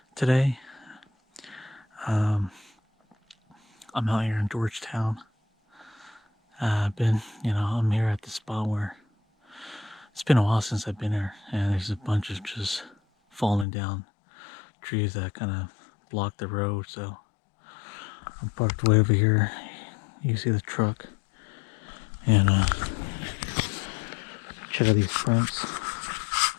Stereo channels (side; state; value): right; drops out; at 13.7 s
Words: today. Um, I'm out here in Georgetown. I'm here at the spot where it's been a while since I've been here, and there's a bunch of just falling down trees that kind of block the road. So I'm parked way over here. You see the truck, and check out these prints.